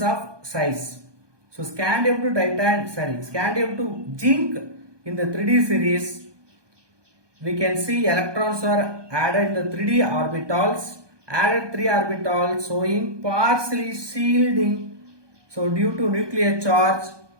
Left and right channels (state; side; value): late; left; 1.2 ms